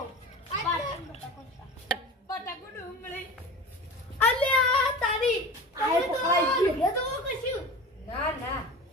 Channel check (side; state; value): both; normal; correlation 0.34